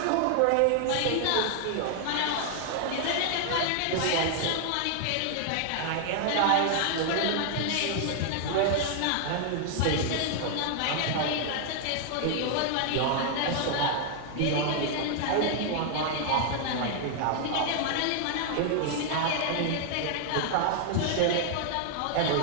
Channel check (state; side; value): different; both; correlation 0.00